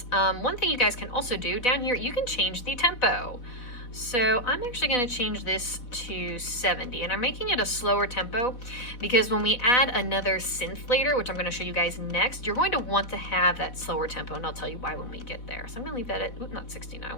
One thing you guys can also do down here, you can change the tempo. So I'm actually going to change this to 70, and I'm making it a slower tempo because when we add another synth later, which I'm going to show you guys next, you're going to want to have that slower tempo, and I'll tell you why when we get there. So I'm going to leave that at, not 69, I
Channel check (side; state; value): right; late; 4.1 ms